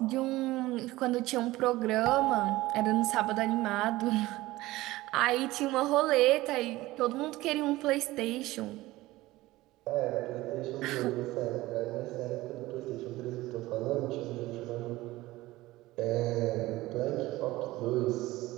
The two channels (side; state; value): left; quieter; 18.2 dB